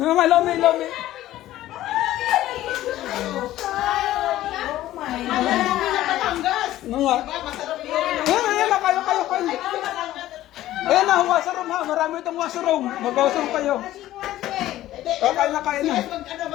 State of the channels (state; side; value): quieter; right; 14.4 dB